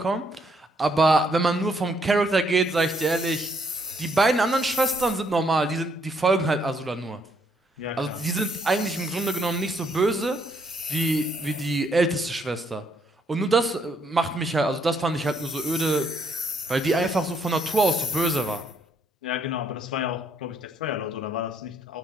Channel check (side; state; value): both; normal; correlation 0.71